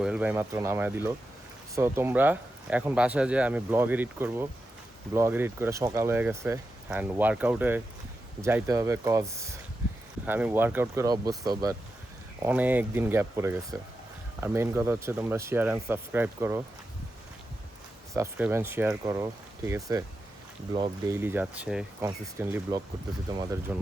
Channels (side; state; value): both; normal; correlation 0.89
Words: ভাই মাত্র নামায় দিল। সো তোমরা এখন বাসায় যেয়ে আমি ব্লগ এডিট করব, ব্লগ এডিট করে সকাল হয়ে গেছে। অ্যান্ড ওয়ার্কআউটে যাইতে হবে, কজ আমি ওয়ার্কআউট করে অভ্যস্ত, বাট অনেক দিন গ্যাপ পড়ে গেছে। আর মেইন কথা হচ্ছে তোমরা শেয়ার অ্যান্ড সাবস্ক্রাইব করো, সাবস্ক্রাইব অ্যান্ড শেয়ার করো, ঠিক আছে? ব্লগ ডেইলি যাচ্ছে, কনসিস্টেন্টলি ব্লগ করতেছি তোমাদের